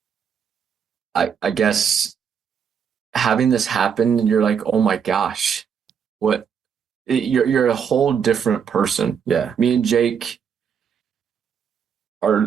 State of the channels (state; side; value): quieter; left; 7.3 dB